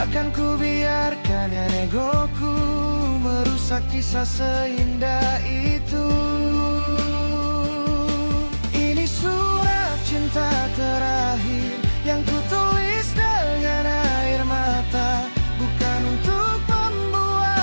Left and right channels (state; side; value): inverted; both; correlation -1.00